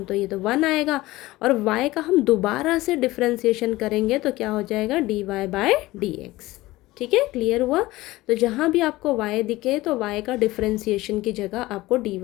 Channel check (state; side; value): quieter; right; 18.5 dB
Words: तो ये तो 1 आएगा, और y का हम दोबारा से डिफरेंशिएशन करेंगे तो क्या हो जाएगा dy/dx, ठीक है। क्लियर हुआ। तो जहाँ भी आपको y दिखे तो y का डिफरेंशिएशन की जगह आपको